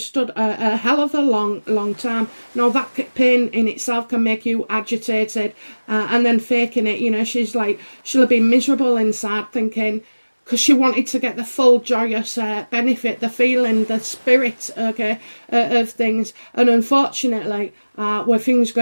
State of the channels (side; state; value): both; inverted; correlation -1.00